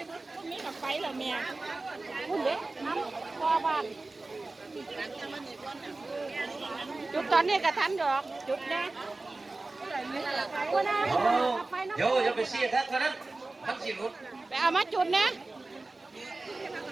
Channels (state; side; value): quieter; left; 3.2 dB